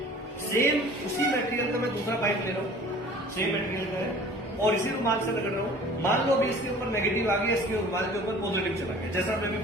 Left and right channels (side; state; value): both; normal; correlation 0.47